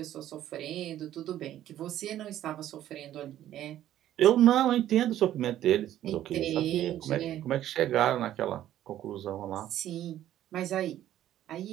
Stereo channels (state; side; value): quieter; left; 12.4 dB